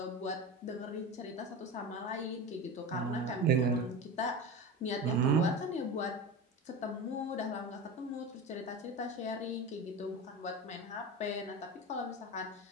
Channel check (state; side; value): normal; both; correlation 0.27